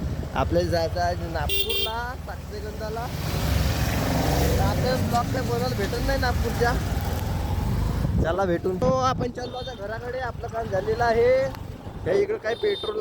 आपल्याला जायचं आहे नागपूरला साक्षीगंधाला. आपल्याला ब्लॉक काय बोलायला भेटत नाही नागपूरच्या. चला भेटून. तो आपण चाललो आता घराकडे. आपलं काम झालेलं आहे. काही इकडं काही पेट्रोल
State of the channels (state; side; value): identical; both; correlation 1.00